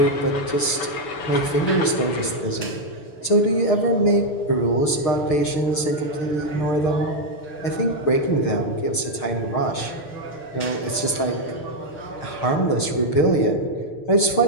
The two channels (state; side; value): late; right; 6.4 ms